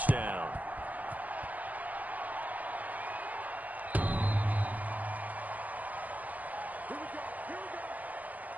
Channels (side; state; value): left; late; 0.079 ms